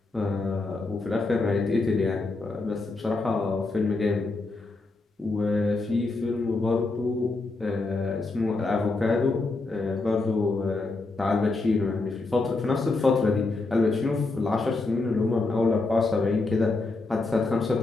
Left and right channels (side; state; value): right; quieter; 3.4 dB